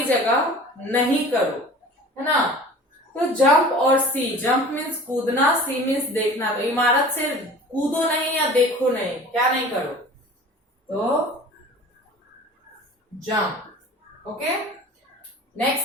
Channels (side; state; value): both; normal; correlation 0.42